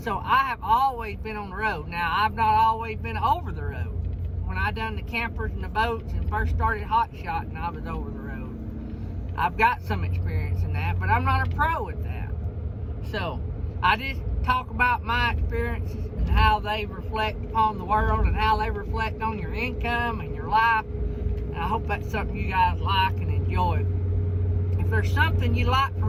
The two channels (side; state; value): both; identical; correlation 1.00